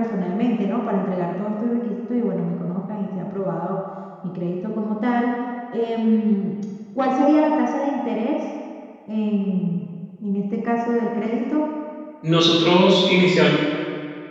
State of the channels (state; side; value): identical; both; correlation 1.00